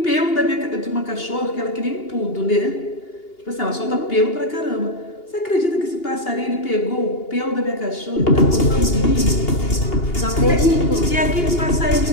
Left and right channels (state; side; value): late; right; 2.8 ms